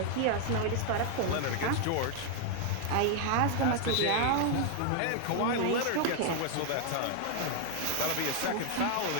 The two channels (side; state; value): both; different; correlation 0.00